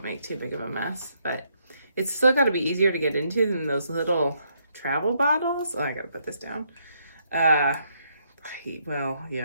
make too big of a mess. But it's still got to be easier to get into than those little travel bottles. Oh, I gotta put this down. Well,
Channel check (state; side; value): inverted; both; correlation -0.74